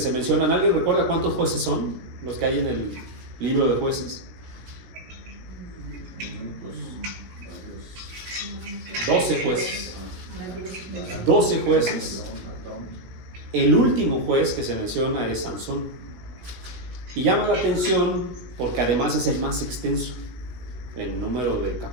mencionan, ¿alguien recuerda cuántos jueces son los que hay en el libro de Jueces? 12 jueces. 12 jueces. El último juez que se menciona es Sansón. Y llama la atención porque además es el más extenso en número de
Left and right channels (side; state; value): left; late; 17 ms